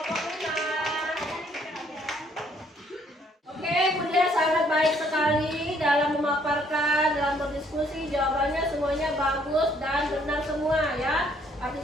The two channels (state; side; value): normal; both; correlation 0.65